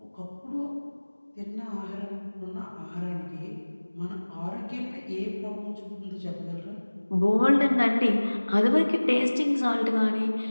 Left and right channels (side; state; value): both; inverted; correlation -1.00